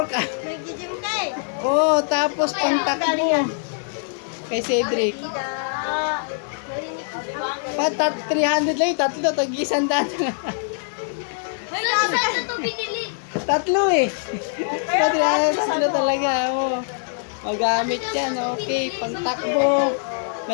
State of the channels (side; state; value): right; silent; digital silence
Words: Nag-gym ka eh. Oh, tapos pang takbo. Kay Cedric. Patat 300 lang yung tatlo. Tag-isandaan. Wala isa na to binili. Tatlo eh. Tatlo talaga. Oh. Magamit yan. Okay. Pang takbo.